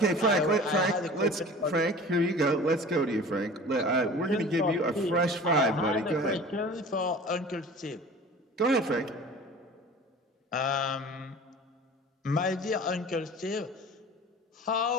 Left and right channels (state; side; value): normal; both; correlation 0.41